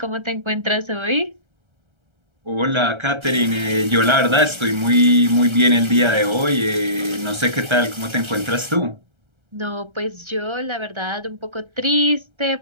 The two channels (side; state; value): left; late; 1.3 ms